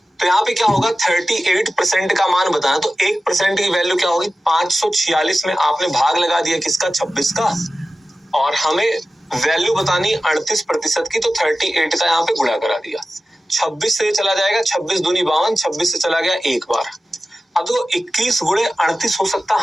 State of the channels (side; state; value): both; normal; correlation 0.95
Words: तो यहाँ पे क्या होगा 38% का मान बताना, तो 1% की वैल्यू क्या होगी 546 में आपने भाग लगा दिया किसका 26 का, और हमें वैल्यू बतानी 38% की, तो 38 का यहाँ पे गुणा करा दिया। 26 से चला जाएगा, 26 दूनी 52, 26 से चला गया एक बार। अब तो 21 गुणे 38 हो सकता,